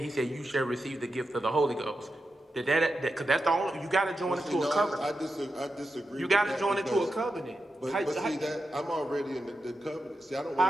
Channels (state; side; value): normal; both; correlation 0.89